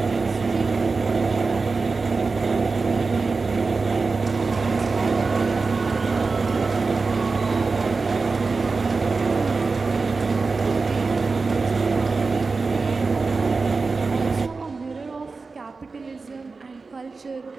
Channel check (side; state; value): left; quieter; 4.2 dB